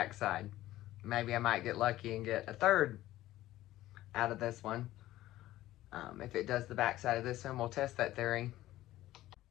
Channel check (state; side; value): quieter; right; 15.3 dB